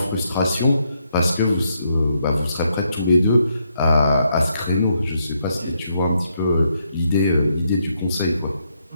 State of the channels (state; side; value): inverted; both; correlation -0.77